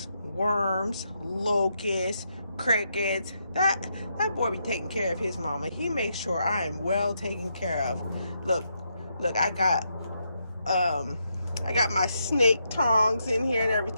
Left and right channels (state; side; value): inverted; both; correlation -0.80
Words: worms, locusts, crickets. That boy be taking care of his mama. He makes sure I am well taken care of. Look, I got my snake tongs in here and